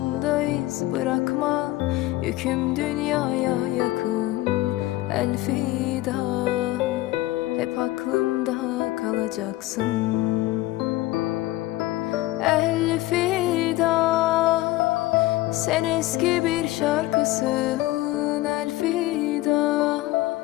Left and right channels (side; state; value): right; quieter; 17.5 dB